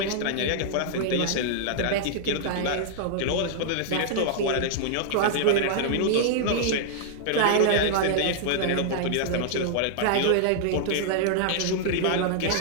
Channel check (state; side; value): different; both; correlation -0.01